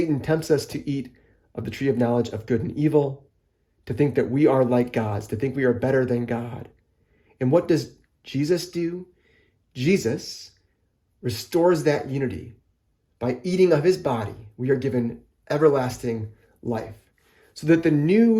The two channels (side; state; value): both; identical; correlation 1.00